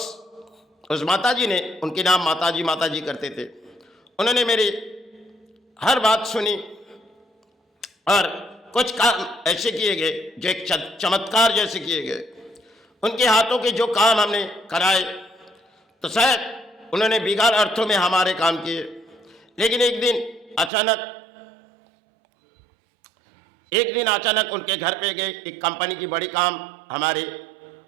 उस माता जी ने, उनके नाम माता जी करते थे, उन्होंने मेरी हर बात सुनी और कुछ काम ऐसे किए गए जो एक चमत्कार जैसे किए गए। उनके हाथों के जो काम हमने कराए तो शायद उन्होंने बिगाड़ अर्थों में हमारे काम किए, लेकिन एक दिन अचानक उनके घर पे गए। एक कंपनी की बड़ी काम हमारे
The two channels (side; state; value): left; drops out; at 20.7 s